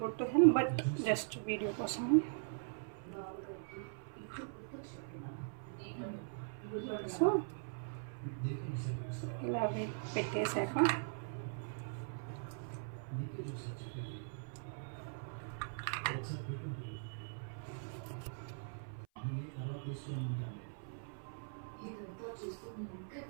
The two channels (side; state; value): left; silent; 51 dB below the other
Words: good to health, but just video కోసం. సో ఇలా పెట్టేశాక